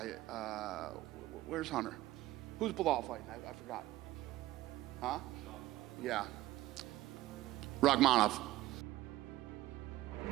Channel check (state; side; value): quieter; left; 16.2 dB